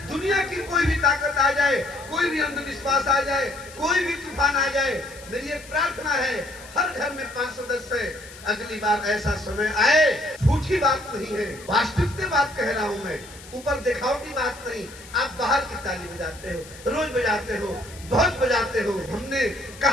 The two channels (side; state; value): left; noise; hiss, 19 dB below the sound